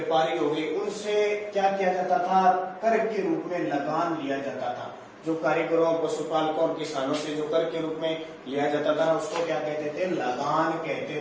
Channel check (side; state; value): both; identical; correlation 1.00